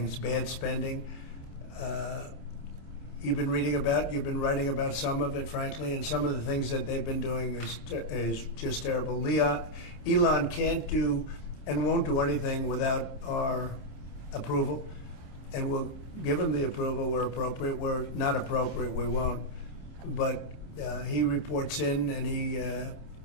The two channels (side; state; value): right; late; 27 ms